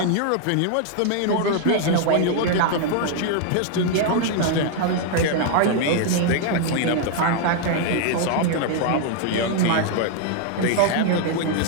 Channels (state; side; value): different; both; correlation 0.00